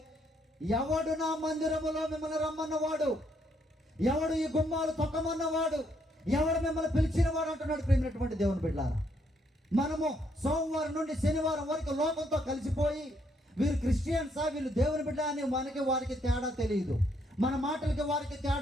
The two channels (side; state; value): both; normal; correlation 0.72